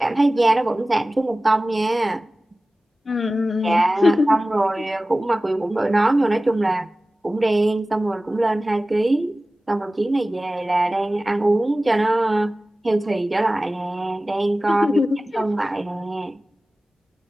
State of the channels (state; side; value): normal; both; correlation 0.97